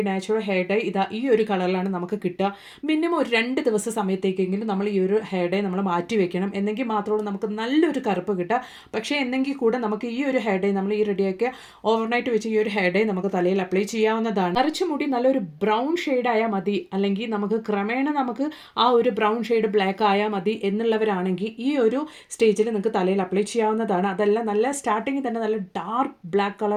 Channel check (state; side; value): identical; both; correlation 1.00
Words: natural hair dye ഈ ഒരു കളറിലാണ് നമുക്ക് കിട്ടുക. മിനിമം ഒരു 2 ദിവസ സമയത്തേക്കെങ്കിലും നമ്മൾ ഈ ഒരു ഹെയർ ഡൈ നമ്മൾ മാറ്റി വെക്കണം. എന്നെങ്കിൽ മാത്രമേ നമുക്ക് നല്ലൊരു കറുപ്പ് കിട്ടുക. പക്ഷേ എന്നെങ്കിൽ കൂടെ നമുക്ക് ഈ ഒരു ഹെയർ ഡൈ, നമ്മൾ ഈ റെഡിയാക്കിയ ഓവർനൈറ്റ് വെച്ച് ഈ ഒരു ഹെയർ ഡൈ നമുക്ക് തലയിൽ അപ്ലൈ ചെയ്യാവുന്നതാണ്. നരച്ച മുടി നല്ലൊരു ബ്രൗൺ ഷെയ്ഡ് ആയാൽ മതി, അല്ലെങ്കിൽ നമുക്ക് ക്രമേണ നമുക്ക് ആ ഒരു ബ്രൗൺ ഷെയ്ഡ് ബ്ലാക്ക് ആയാൽ മതി എന്നുള്ളവരാണെങ്കിൽ ഈ ഒരു സ്റ്റേജിൽ നിങ്ങൾക്ക് തലയിൽ അപ്ലൈ ചെയ്യാവുന്നതാണ്. അതല്ല, നല്ല സ്റ്റാർട്ടിങ്ങിൽ തന്നെ നല്ല ഡാർക്ക് ബ്ലാക്ക്